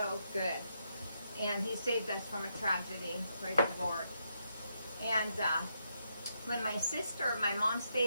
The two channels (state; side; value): inverted; both; correlation -0.80